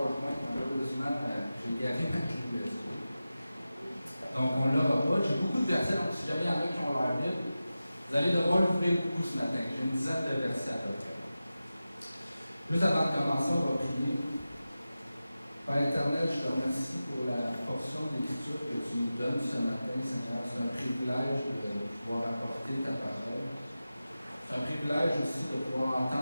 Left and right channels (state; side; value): inverted; both; correlation -0.94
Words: malheureusement, j'ai garé ma clé USB. Donc, on ne l'aura pas. J'ai beaucoup de versets, donc si jamais il y en a qui ont leur Bible, vous allez devoir l'ouvrir beaucoup ce matin. J'ai une dizaine de versets à peu près. Juste avant de commencer, on va prier. Père éternel, je te remercie pour la portion d'écriture que tu nous donnes ce matin, Seigneur. C'est un privilège de pouvoir apporter ta parole. C'est un privilège aussi de pouvoir